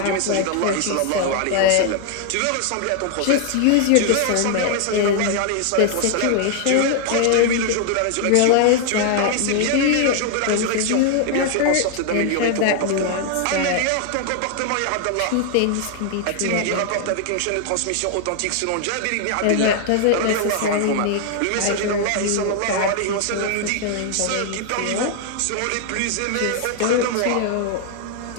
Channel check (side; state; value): both; different; correlation 0.00